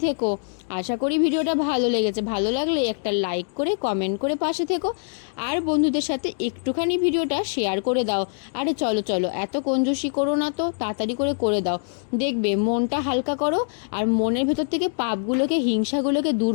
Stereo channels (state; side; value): silent; right; digital silence